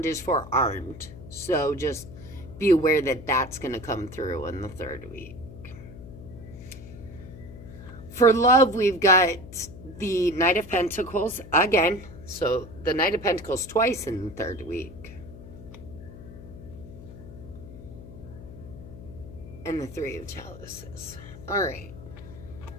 is forearmed. So just be aware that that's going to come through in the third week. For love, we've got the Knight of Pentacles again. So the Knight of Pentacles twice in the third week. And the Three of Chalices. All right.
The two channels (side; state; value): left; noise; hum, 15 dB below the sound